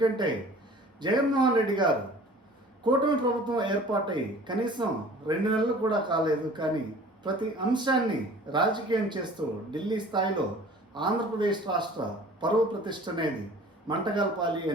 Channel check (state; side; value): normal; both; correlation 0.47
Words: జగన్మోహన్ రెడ్డి గారు కూటమి ప్రభుత్వం ఏర్పాటై కనీసం 2 నెలలు కూడా కాలేదు, కానీ ప్రతి అంశాన్ని రాజకీయం చేస్తూ ఢిల్లీ స్థాయిలో ఆంధ్రప్రదేశ్ రాష్ట్ర పరువు ప్రతిష్ట అనేది మంటగల్పాలి